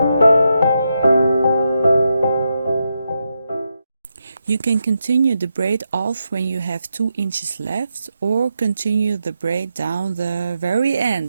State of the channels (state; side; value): inverted; both; correlation -0.84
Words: You can continue the braid off when you have 2 inches left, or continue the braid down the very